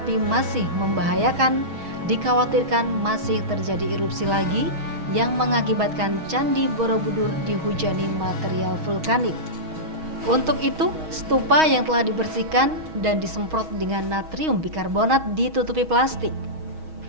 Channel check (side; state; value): left; late; 6.3 ms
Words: masih membahayakan, dikhawatirkan masih terjadi erupsi lagi yang mengakibatkan Candi Borobudur dihujani material vulkanik. Untuk itu, stupa yang telah dibersihkan dan disemprot dengan natrium bikarbonat ditutupi plastik.